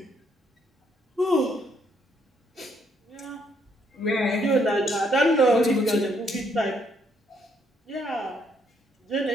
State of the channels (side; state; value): both; normal; correlation 0.71